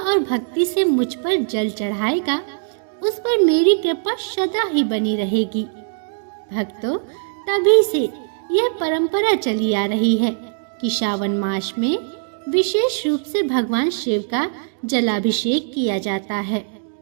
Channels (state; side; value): silent; left; digital silence